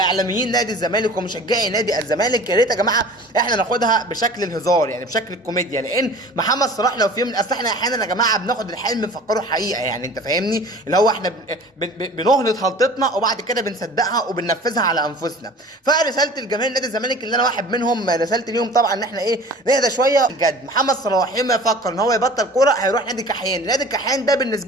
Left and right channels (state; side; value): normal; both; correlation 0.43